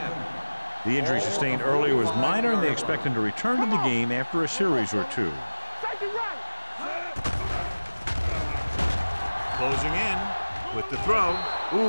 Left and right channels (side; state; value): both; inverted; correlation -1.00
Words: The injury sustained earlier was minor, and they expect him to return to the game after a series or two. Take it right. Closing in with the throw.